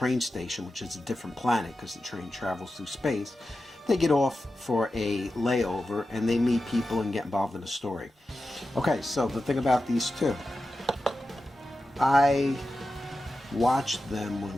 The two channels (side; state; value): both; normal; correlation 0.92